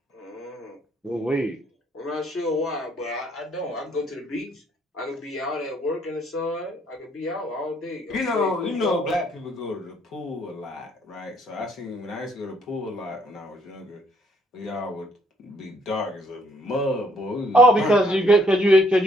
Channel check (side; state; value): both; normal; correlation 0.67